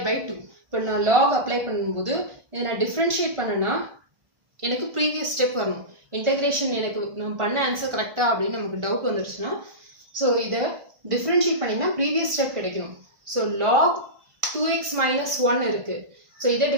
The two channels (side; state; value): left; late; 1.4 ms